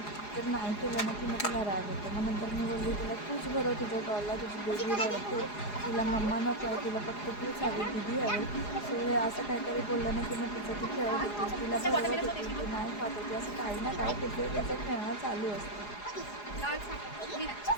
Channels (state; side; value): late; right; 4.8 ms